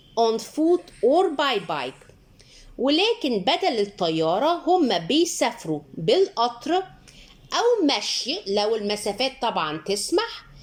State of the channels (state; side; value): identical; both; correlation 1.00